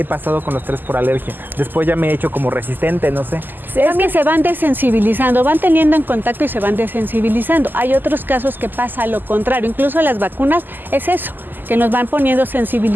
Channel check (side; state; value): left; late; 0.090 ms